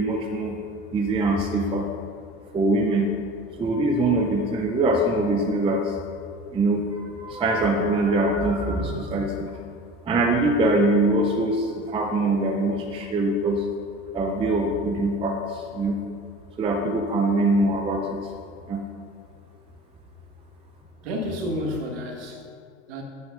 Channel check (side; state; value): both; normal; correlation 0.40